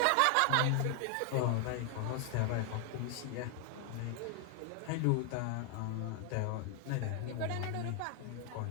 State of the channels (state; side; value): different; both; correlation 0.00